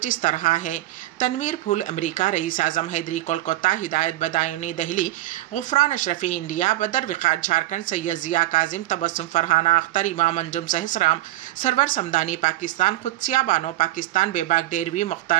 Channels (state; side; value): quieter; left; 16.0 dB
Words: اس طرح ہے: تنویر پھول امریکہ، رئیس اعظم حیدری کولکتہ، ہدایت بدایونی دہلی، غفران اشرفی انڈیا، بدر وقار جھارکھنڈ، سید ضیاء کاظم، تبسم فرحانہ اختر، امام انجم سہسرام، سرور سمدانی پاکستان، قدسیہ بانو پاکستان، بیباک ڈیروی،